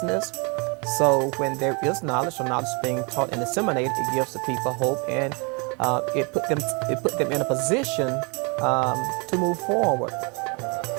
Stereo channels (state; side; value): quieter; left; 32.7 dB